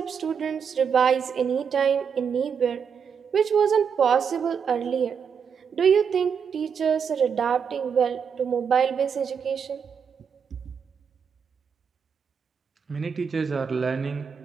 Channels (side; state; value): left; quieter; 6.8 dB